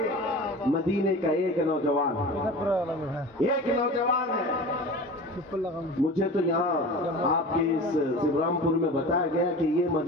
مدینے کا ایک نوجوان ہے، مجھے تو یہاں آپ کے اس سبرام پور میں بتایا گیا کہ یہ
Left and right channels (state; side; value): normal; both; correlation 0.35